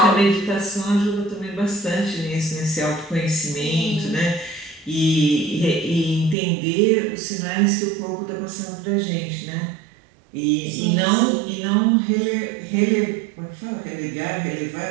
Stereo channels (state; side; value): drops out; left; at 6.4 s